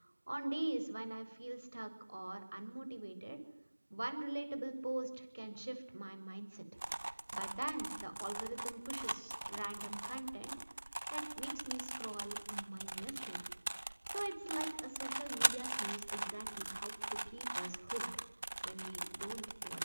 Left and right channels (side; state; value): both; inverted; correlation -1.00